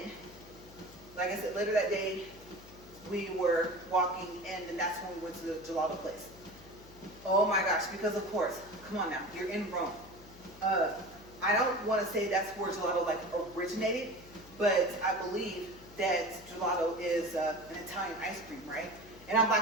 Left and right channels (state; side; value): noise; left; hum, 21 dB below the sound